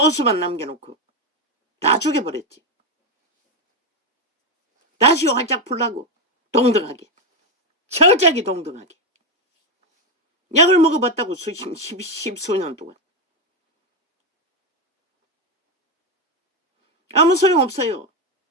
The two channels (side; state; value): both; normal; correlation 0.08